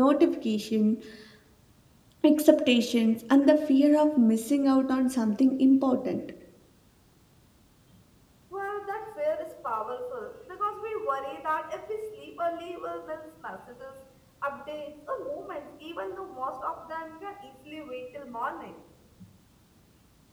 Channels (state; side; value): identical; both; correlation 1.00